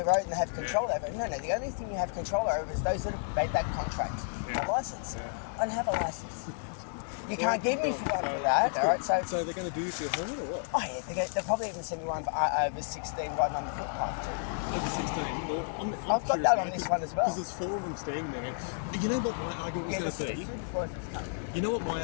road and they have control over it. No, the only thing you have control over is those that have made that contract. A license. I don't have a license. You can't give me for one for that, all right? So they're going to do you for your helmet or what? Oh yeah, they'll probably even send me one for over 16 riding on the footpath too. Over 16? Well, I'm I've got that on this one as well. Because there's 4 of them standing there. You know what my argument was going to be? You know what my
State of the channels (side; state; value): right; silent; digital silence